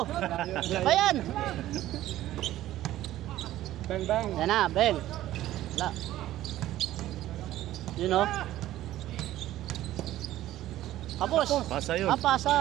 Ayan! Bang. Yan na, bang. Wala. You know? Kapos. Pasa yun.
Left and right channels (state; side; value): quieter; left; 14.3 dB